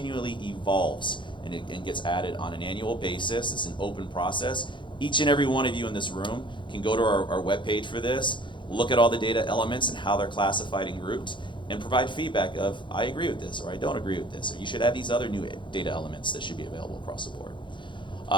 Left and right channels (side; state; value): right; late; 0.23 ms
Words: evolves and gets added on an annual basis. It's an open process. Each and every one of you in this room can go to our webpage for this, look at all the data elements and how they're classified and grouped, and provide feedback of, I agree with this, or I don't agree with this, or you should add these other new data elements that should be available across the board.